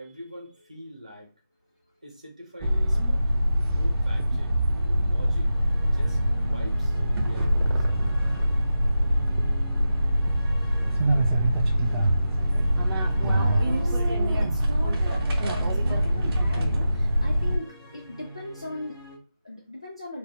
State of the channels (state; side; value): inverted; both; correlation -0.91